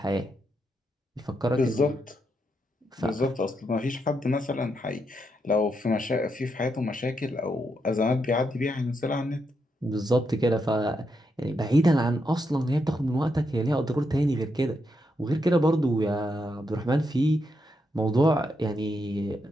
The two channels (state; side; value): normal; both; correlation 0.81